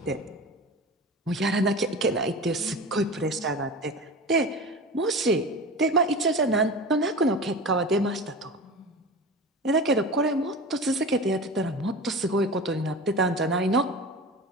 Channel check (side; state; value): both; normal; correlation 0.31